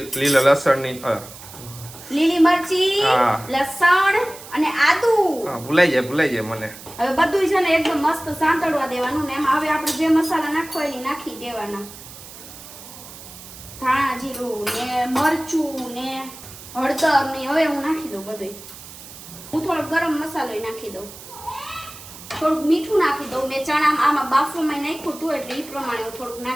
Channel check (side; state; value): right; noise; hiss, 16 dB below the sound